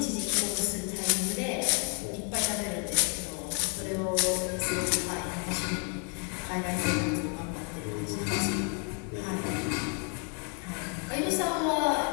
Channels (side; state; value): right; quieter; 39.5 dB